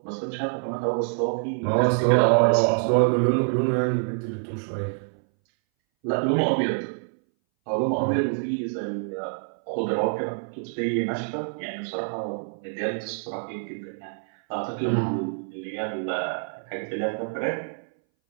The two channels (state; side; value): silent; left; 60 dB below the other